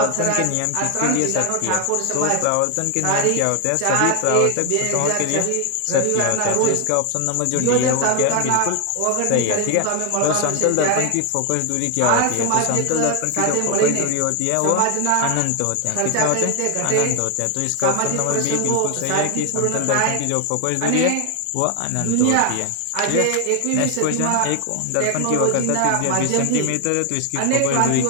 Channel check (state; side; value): different; both; correlation 0.00